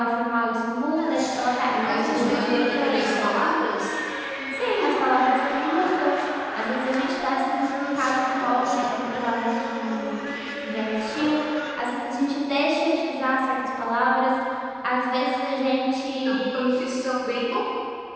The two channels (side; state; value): both; identical; correlation 1.00